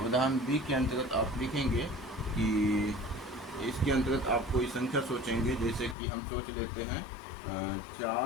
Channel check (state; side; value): drops out; right; at 6.0 s